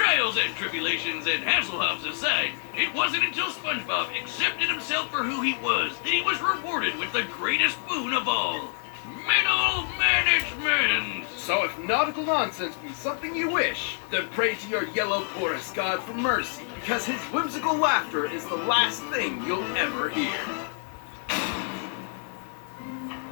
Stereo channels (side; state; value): right; silent; 60 dB below the other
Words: and tribulations and Hasselhoffs aside, it wasn't until SpongeBob accepted himself for who he was that he was rewarded with the greatest boon of all. Middle management! So if nautical nonsense be something you wish, then pray to your yellow porous god for mercy, because his whimsical laughter is the last thing you'll ever hear.